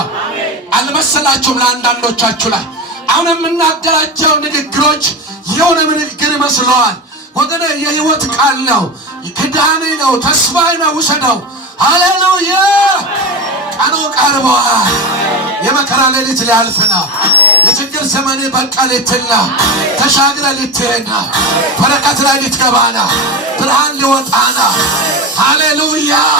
አልመሰላችሁም? ለአንዳንዶቻችሁ ላይ አሁን የምናገራቸው ንግግሮች የሆነ ንግግር ይመስለዋል። ወገኔ የህይወት ቃል ነው። ክዳኔ ነው። ተስፋዬ ነው። ውሰደው። ሃሌሉያ! ቀኑ ቀርቧል። የመከራ ሌሊት ሊያልፍ ነው። የችግር ዘመኔ በቃ ልትል ነው። ተሻግረ ልትሄድ ነው። በረከት ላይ ልትገባ ነው። ብርሃን ሊወጣ ነው። ሃሌሉያ!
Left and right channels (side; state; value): both; normal; correlation 0.22